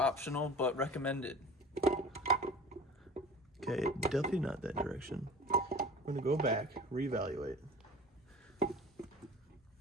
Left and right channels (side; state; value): both; normal; correlation 0.40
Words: but recommended. Okay, definitely not that direction. We're gonna go back, reevaluate.